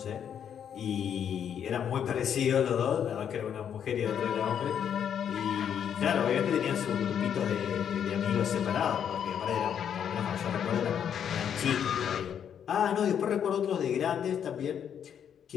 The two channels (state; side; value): quieter; right; 8.6 dB